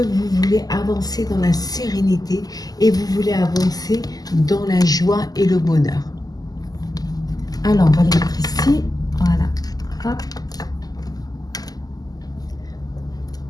voulez avancer dans la sérénité et vous voulez avancer dans la joie et le bonheur. Alors, on va les mettre ici. Voilà. Hop.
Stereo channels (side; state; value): right; late; 0.18 ms